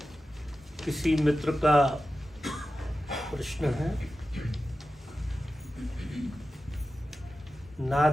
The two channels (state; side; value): normal; both; correlation 0.93